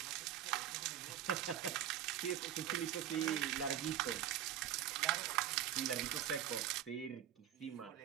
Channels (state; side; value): quieter; left; 11.0 dB